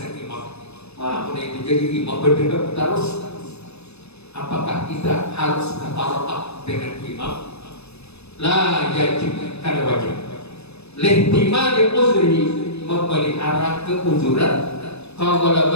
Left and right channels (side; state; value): right; late; 0.79 ms